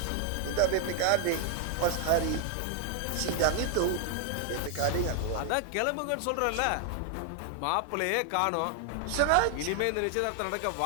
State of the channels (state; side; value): different; both; correlation 0.00